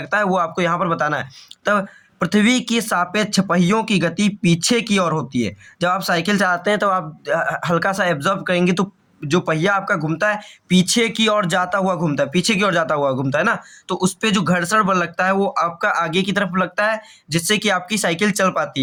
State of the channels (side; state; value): both; identical; correlation 1.00